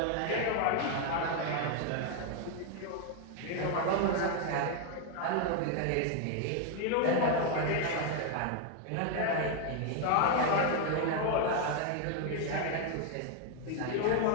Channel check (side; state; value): both; different; correlation 0.01